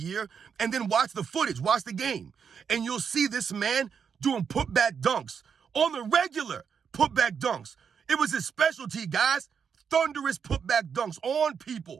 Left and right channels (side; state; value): left; quieter; 6.8 dB